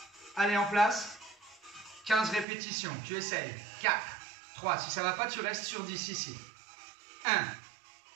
Allez, en place. 15 répétitions. Tu essayes. 4, 3. Si ça ne va pas, tu restes sur 10 ici. 1,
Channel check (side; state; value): left; drops out; at 2.5 s